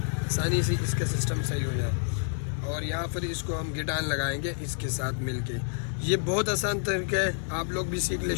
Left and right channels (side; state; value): right; silent; digital silence